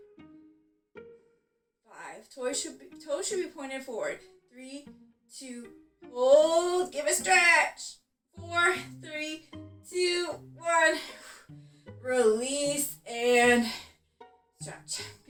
5. Toes should be pointed forward. 3, 2, hold, give a stretch. 4, 3, 2, 1. Release and stretch.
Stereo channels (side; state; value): both; identical; correlation 1.00